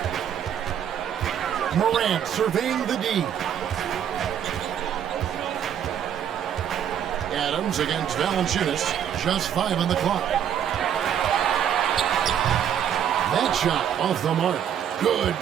Morant surveying the D. Adams against Valanciunas. Just 5 on the clock. That shot off the mark. Good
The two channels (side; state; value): left; quieter; 9.2 dB